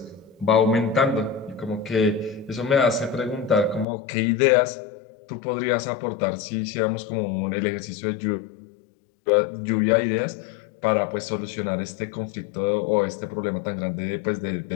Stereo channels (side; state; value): right; drops out; at 3.9 s